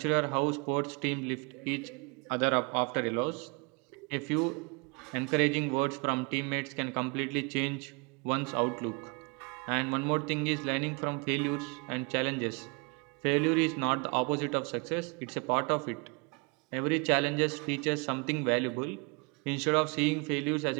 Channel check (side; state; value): left; quieter; 31.6 dB